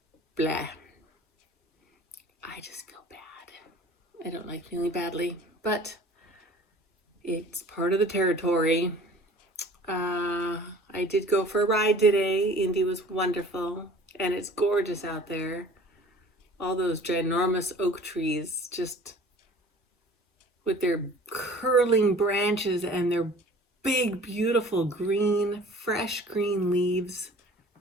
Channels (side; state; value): both; normal; correlation 0.47